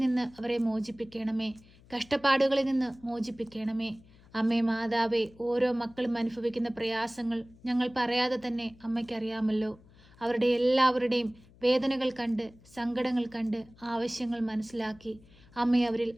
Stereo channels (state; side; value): noise; left; hum, 26 dB below the sound